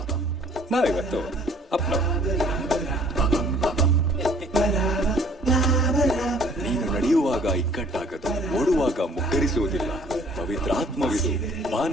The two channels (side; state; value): both; normal; correlation 0.55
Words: ನಾವಿವತ್ತು ಅಪ್ಪನವರು. ನೀನು ನಡೆಯುವಾಗ ಈ ಇಕ್ಕಟ್ಟಾಗದು, ಓಡುವಾಗ ಮುಗ್ಗರಿಸುವುದಿಲ್ಲ. ಪವಿತ್ರಾತ್ಮವಿದು,